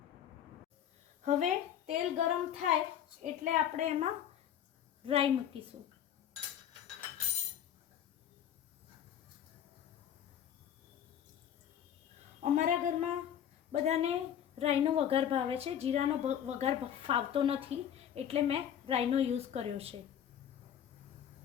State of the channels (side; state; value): right; quieter; 9.7 dB